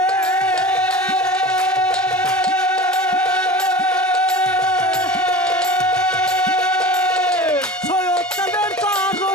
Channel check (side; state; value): both; normal; correlation 0.35